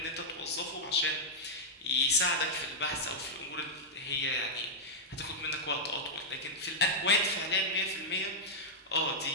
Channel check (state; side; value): normal; both; correlation -0.05